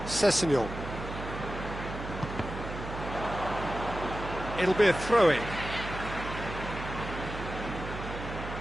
Sessegnon. It'll be a throw-in.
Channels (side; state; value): right; noise; hum, 8 dB below the sound